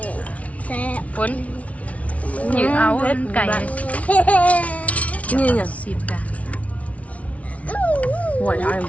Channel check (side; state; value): right; late; 0.066 ms